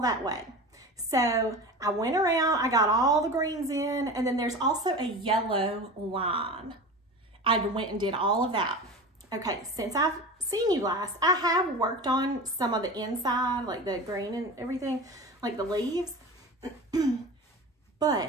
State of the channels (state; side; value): normal; both; correlation 0.32